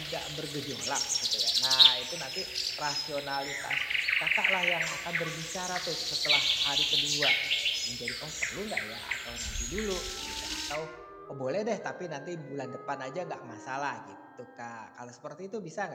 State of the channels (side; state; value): both; identical; correlation 1.00